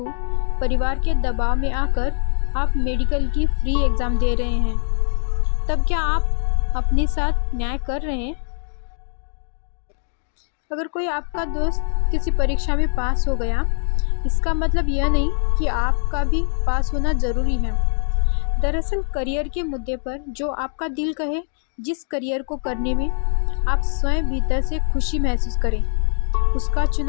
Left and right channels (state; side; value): silent; right; digital silence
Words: परिवार के दबाव में आकर आप मेडिकल की फ्री एग्ज़ाम दे रहे हैं, तब क्या आप अपने साथ न्याय कर रहे हैं? अगर कोई आपका दोस्त किसी परीक्षा में पास हो गया, इसका मतलब यह नहीं कि आपका भी पास होना ज़रूरी है। दरअसल करियर के मुद्दे पर जो आपका दिल कहे, जिस करियर को करने में आप स्वयं भीतर से खुशी महसूस करें, उसका